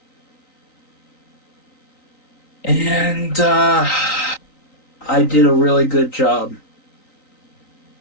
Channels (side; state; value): right; late; 3.9 ms